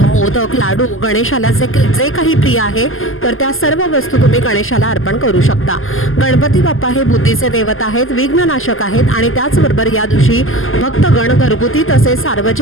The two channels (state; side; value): late; right; 0.59 ms